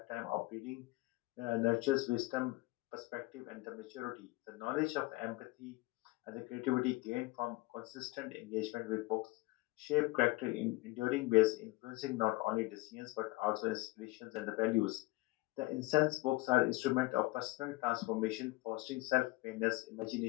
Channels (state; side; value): quieter; right; 21.5 dB